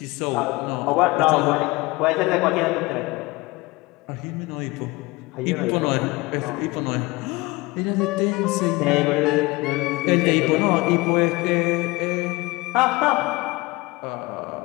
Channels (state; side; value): quieter; right; 22.8 dB